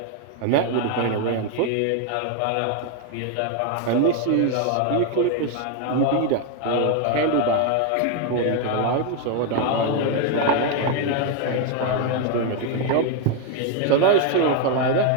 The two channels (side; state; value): both; different; correlation 0.01